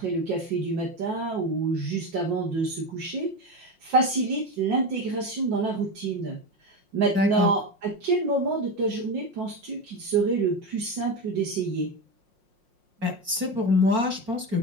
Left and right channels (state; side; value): late; left; 5.6 ms